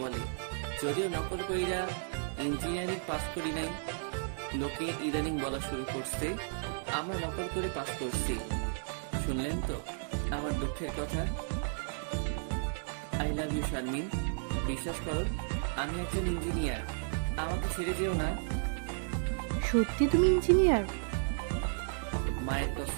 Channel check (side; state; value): left; silent; 55 dB below the other